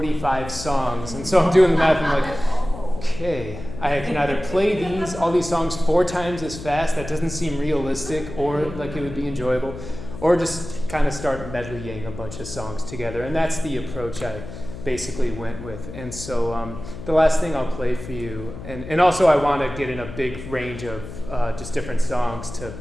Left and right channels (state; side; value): noise; left; hum, 11 dB below the sound